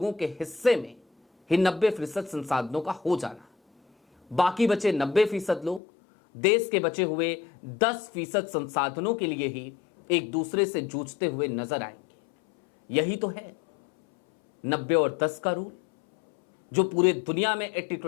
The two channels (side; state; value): right; drops out; at 5.8 s